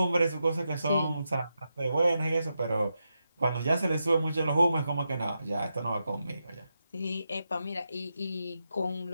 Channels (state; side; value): inverted; both; correlation -0.87